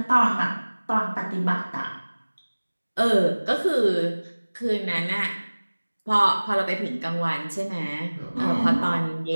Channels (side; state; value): both; inverted; correlation -1.00